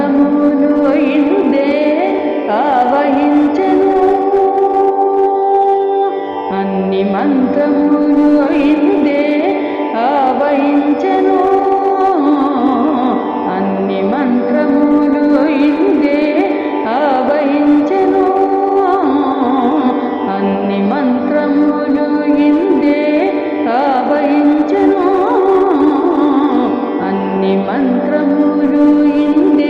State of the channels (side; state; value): both; identical; correlation 1.00